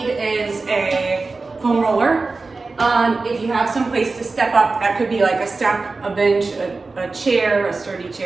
is a foam roller. If you have some place to step up, that could be like a step, a bench, a chair, a sturdy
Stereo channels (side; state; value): left; quieter; 3.8 dB